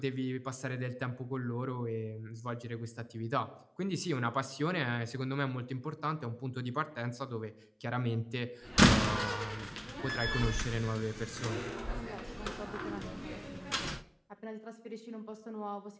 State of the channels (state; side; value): identical; both; correlation 1.00